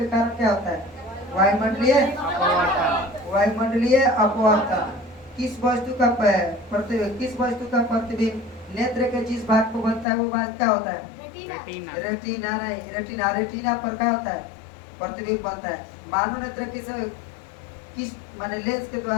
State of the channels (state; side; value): drops out; right; at 10.1 s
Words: कारण क्या होता है? वायुमंडलीय अपवर्तन। किस वस्तु का प्रतिबिंब नेत्र के जिस भाग को बनता है वो भाग क्या होता है? रेटिना। रेटिना पर क्या होता है? प्रतिबिंब बनता है। मानव नेत्र किस माने लेंस के